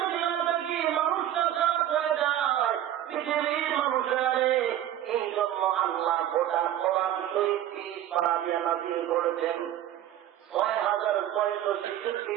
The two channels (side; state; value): left; quieter; 11.8 dB